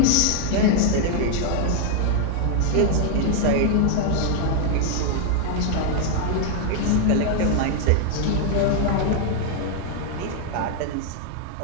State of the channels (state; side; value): different; both; correlation 0.00